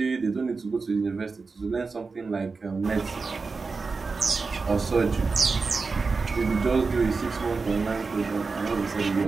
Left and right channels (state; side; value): quieter; left; 4.4 dB